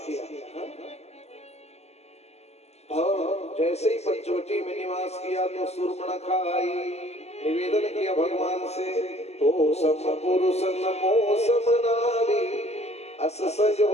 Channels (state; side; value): late; right; 0.31 ms